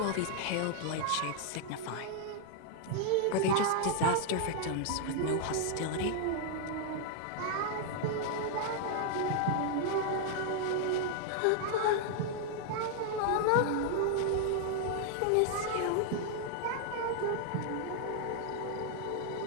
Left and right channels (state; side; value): different; both; correlation 0.00